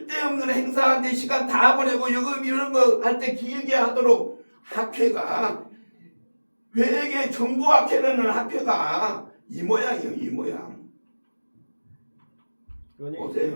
행사한테 시간 다 보내고 여금 이런 거 할 때 길게 하도록 학회가 회계 정보학회라는 학회가 이 모양이에요. 이 모양.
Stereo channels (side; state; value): both; inverted; correlation -1.00